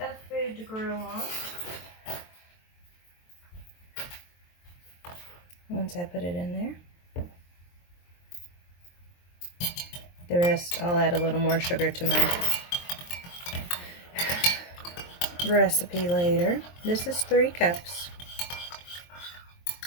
of food to grow on. Once I put it in there, the rest, I'll add a little more sugar to my recipe later. This is 3 cups.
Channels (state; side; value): late; right; 23 ms